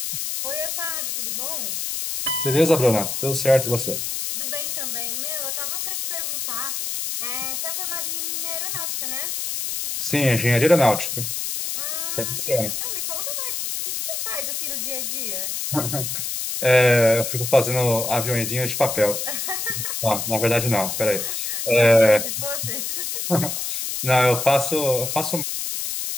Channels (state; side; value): noise; left; hiss, 3 dB below the sound